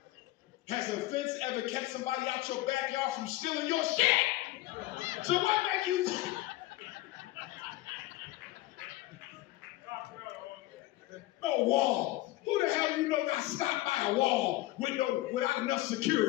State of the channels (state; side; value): quieter; right; 17.5 dB